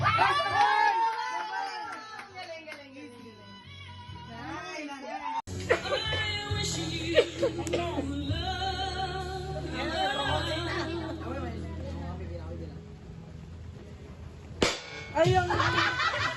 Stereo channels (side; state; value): both; identical; correlation 1.00